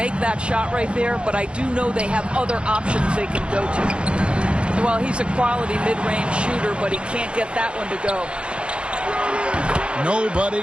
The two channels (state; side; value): late; left; 0.058 ms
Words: that shot right there, but I do know they have other options they can go to. Well, he's a quality mid-range shooter, but he can't get that one to go. Nobody